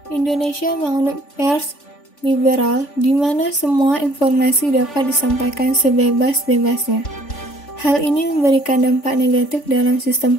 Indonesia menganut pers liberal di mana semua informasi dapat disampaikan sebebas-bebasnya. Hal ini memberikan dampak negatif dalam sistem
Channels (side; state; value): right; late; 3.5 ms